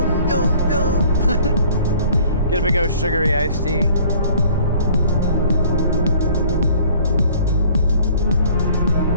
yum, yum. Get a big old sugary iced tea.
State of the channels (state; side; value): inverted; both; correlation -0.53